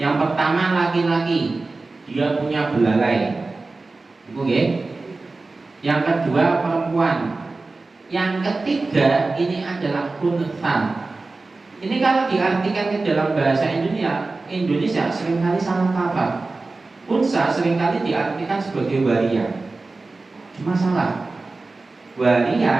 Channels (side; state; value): left; quieter; 3.5 dB